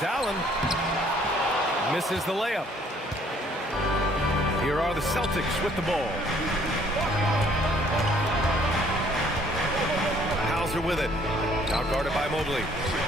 Allen. Misses the layup. Here are the Celtics with the ball. Hauser with it. Now guarded by Mobley.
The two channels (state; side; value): normal; both; correlation 0.61